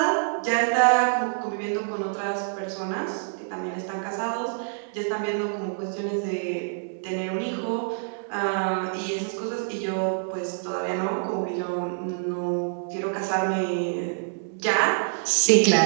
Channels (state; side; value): silent; left; digital silence